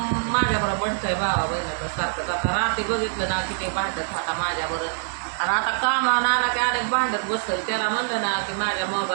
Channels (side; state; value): left; silent; digital silence